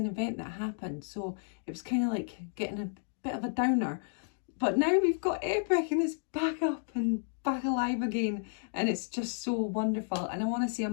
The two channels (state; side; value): silent; right; digital silence